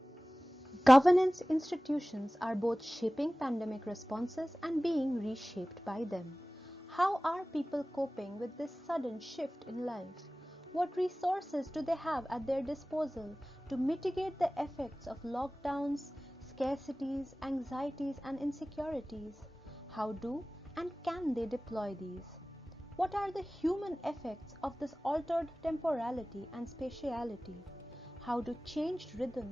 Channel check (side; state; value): both; normal; correlation 0.98